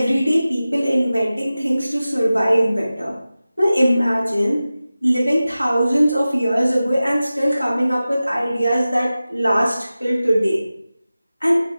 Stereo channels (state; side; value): inverted; both; correlation -0.95